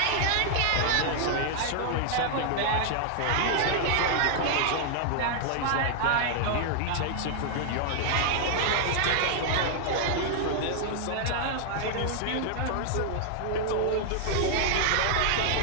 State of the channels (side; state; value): both; different; correlation 0.00